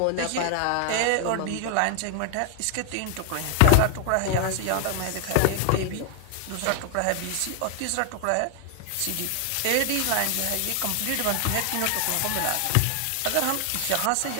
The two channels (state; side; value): different; both; correlation 0.00